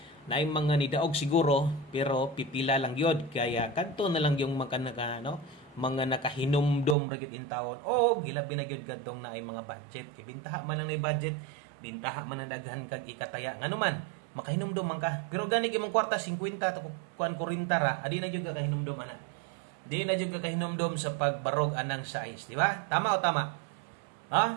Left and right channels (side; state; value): left; drops out; at 7.0 s